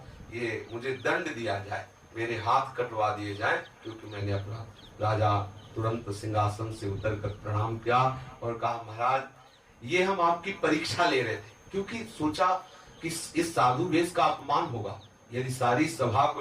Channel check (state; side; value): identical; both; correlation 1.00